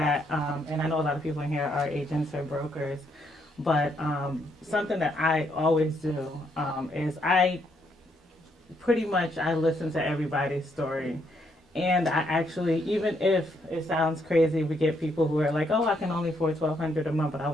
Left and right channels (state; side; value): normal; both; correlation 0.74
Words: and I know a lot of people in here are agents or brokers, but something that I always do is I listen to everybody's story. And I actually, even if it sounds crazy, we get people who are like, oh, I can only afford $1,200 a month, but I